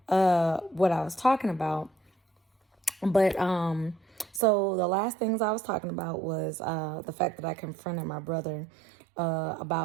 what I was talking about. But so the last things I was talking about was the fact that I confronted my brother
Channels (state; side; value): drops out; left; at 4.4 s